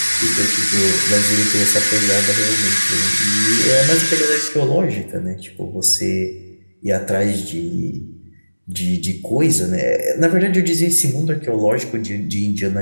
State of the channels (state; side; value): inverted; both; correlation -1.00